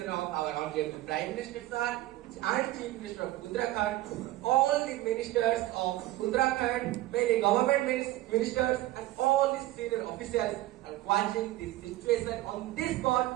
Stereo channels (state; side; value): quieter; left; 16.4 dB